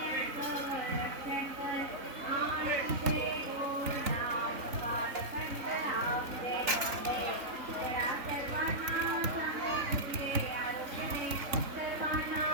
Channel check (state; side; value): late; left; 3.6 ms